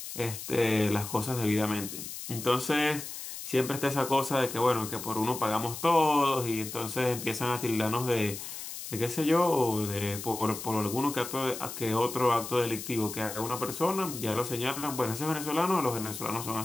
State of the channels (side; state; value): left; noise; hiss, 9 dB below the sound